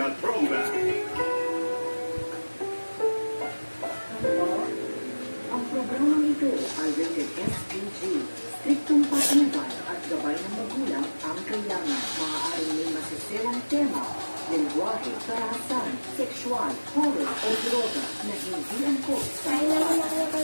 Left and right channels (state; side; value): inverted; both; correlation -1.00